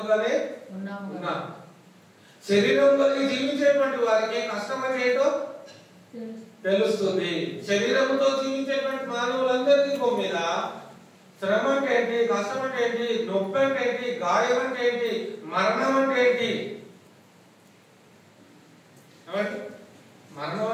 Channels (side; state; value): both; identical; correlation 1.00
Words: ఉన్నాం. శరీరం కలిగి జీవించేటువంటి వారికి కష్టం అంటే ఏంటో తెలుస్తుంది. శరీరంతో జీవించేటువంటి మానవులందరికీ మీద శ్రమ అంటే ఏంటి, కష్టం అంటే ఏంటి, నొప్పి అంటే ఏంటి, గాయం అంటే ఏంటి, మరణం అంటే ఏంటి, మరణం